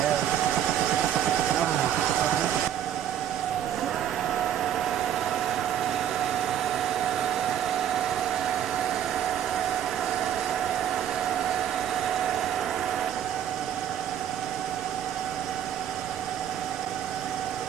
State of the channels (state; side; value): quieter; left; 10.0 dB